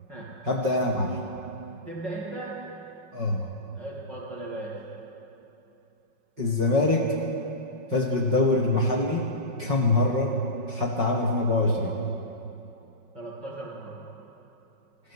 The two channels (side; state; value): left; late; 5.4 ms